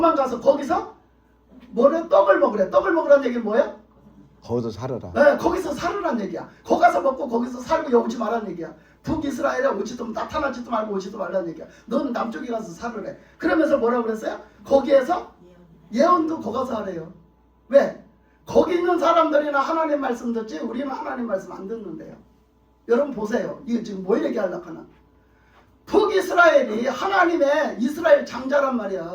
거기서 뭐래? 떡을 먹으래. 떡을 먹으라는 얘기는 뭐예요? 거기서 살아라. 네, 거기서 살으란 얘기야. 거기 가서 먹고 거기서 살고 여기 오지 말라는 얘기야. 북이스라엘에 오지도 나타나지도 말고 오지도 말라는 얘기야. 너는 남쪽에 가서 살으래. 그러면서 뭐라고 그랬어요? 거기에서 예언도 거기 가서 하래요. 왜? 거기 있는 사람들이나 하나님 말씀 듣지 우리는 하나님 말씀 안 듣는데요. 여러분 보세요. 이거 지금 뭘 얘기하려고 하나. 북이스라엘이 하나님의 이스라엘 장자란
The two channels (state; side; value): identical; both; correlation 1.00